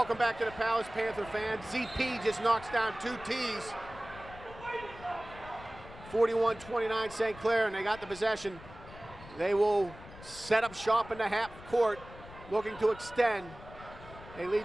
back to the Palace, Panther fans. ZP just knocks down 2 tees. 41-29 St. Clair, and they got the possession. They will set up shop in the half court, looking to extend. They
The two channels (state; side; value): noise; left; rumble, 17 dB below the sound